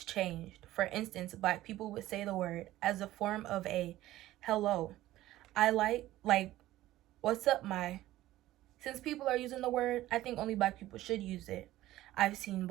changed. For instance, black people would say the word as a form of a hello. I like, what's up, my? Since people are using the word, I think only black people should use it. I've seen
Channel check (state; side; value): quieter; left; 15.4 dB